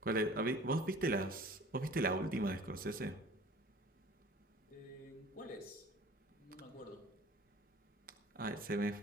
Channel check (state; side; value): normal; both; correlation 0.46